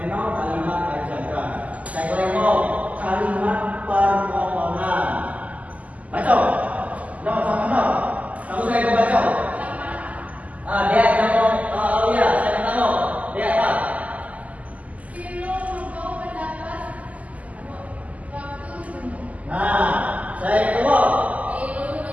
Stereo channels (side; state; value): left; late; 0.072 ms